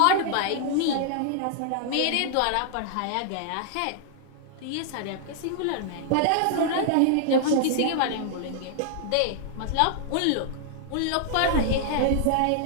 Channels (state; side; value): different; both; correlation -0.01